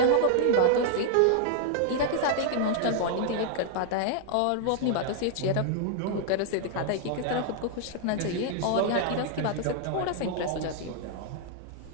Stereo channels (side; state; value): both; different; correlation -0.01